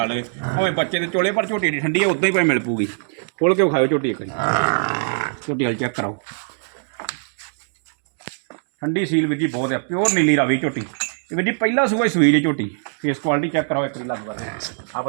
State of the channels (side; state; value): left; silent; digital silence